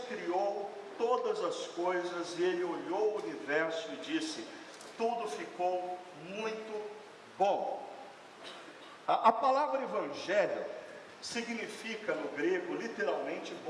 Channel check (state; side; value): identical; both; correlation 1.00